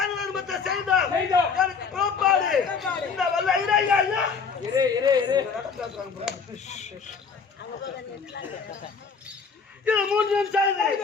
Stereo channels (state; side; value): quieter; right; 5.5 dB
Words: தர்மத்தை செய்தோம். எனக்கு பிறப்பாடு இந்த வல்ல இறையா. இது மூன்றையும் செய்து